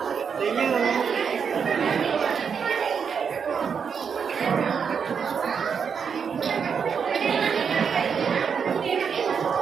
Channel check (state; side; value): quieter; left; 6.6 dB